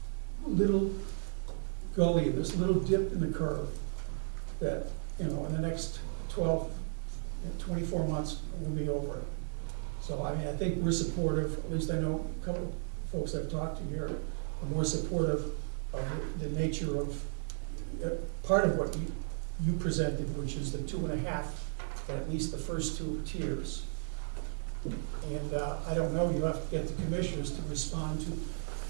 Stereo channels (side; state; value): left; silent; 55 dB below the other